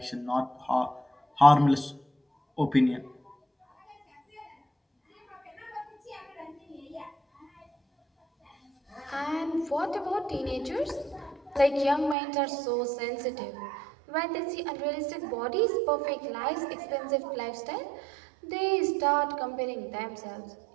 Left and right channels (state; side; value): drops out; left; at 12.2 s